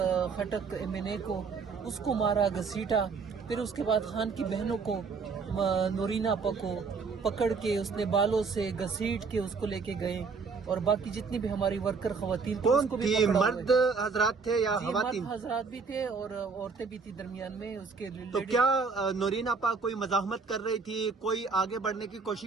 خٹک MNA کو, اس کو مارا, گھسیٹا. پھر اس کے بعد خان کی بہنوں کو, نورین آپا کو پکڑ کے اس نے بالوں سے گھسیٹ کے اس کو لے کے گئے, اور باقی جتنی بھی ہماری ورکر خواتین کون تھی, مرد حضرات تھے یا خواتین؟ مرد حضرات بھی تھے اور عورتیں بھی تھی درمیان میں اس کے. تو کیا نورین آپا کوئی مزاحمت کر رہی تھی, کوئی آگے بڑھنے کی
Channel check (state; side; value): quieter; left; 4.9 dB